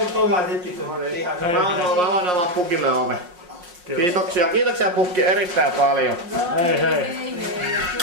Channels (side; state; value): left; late; 5.6 ms